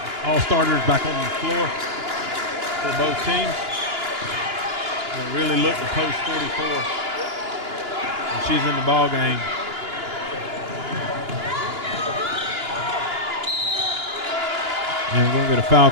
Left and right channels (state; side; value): late; left; 2.9 ms